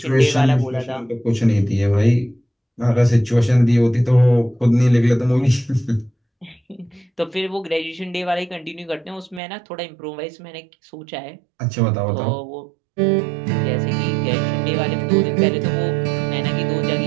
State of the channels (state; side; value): drops out; left; at 9.4 s